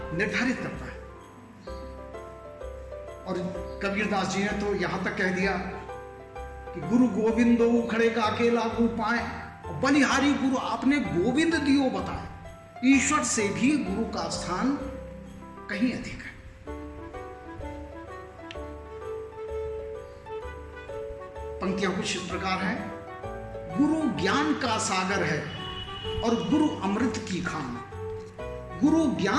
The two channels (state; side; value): identical; both; correlation 1.00